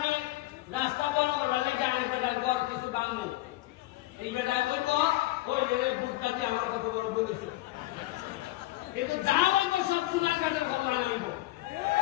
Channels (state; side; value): quieter; right; 17.9 dB